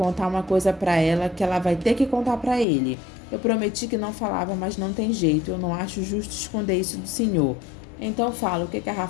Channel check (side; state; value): right; drops out; at 2.7 s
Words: uma coisa pra ela que ela vai ter que contar pra ele. Eu prometi que não falava, mas não tem jeito. Eu não acho justo esconder isso do senhor. Então fala, o que a